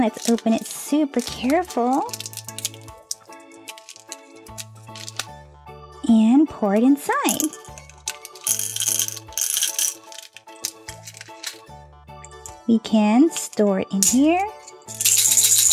let's open it super careful. and pour it inside. We can store it in here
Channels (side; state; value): both; identical; correlation 1.00